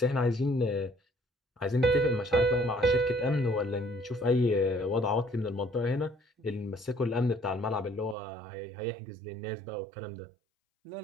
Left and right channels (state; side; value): drops out; left; at 8.2 s